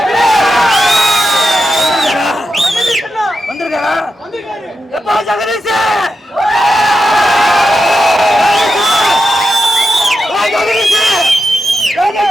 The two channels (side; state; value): both; normal; correlation 0.88